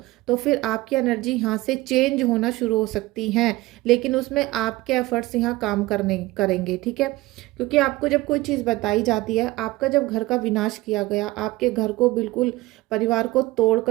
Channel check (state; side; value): quieter; left; 19.5 dB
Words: तो फिर आपकी एनर्जी यहाँ से चेंज होना शुरू हो सकती हैं, लेकिन उसमें आपके एफर्ट्स यहाँ काम करने करेंगे। ठीक है, क्योंकि आपको जब कोई चीज़ बताई जाती है, आपका जब घर का विनाश किया गया, आपके घर को बिल्कुल, परिवार को